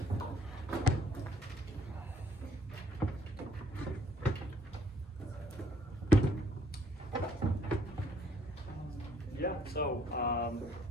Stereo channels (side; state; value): both; normal; correlation 0.64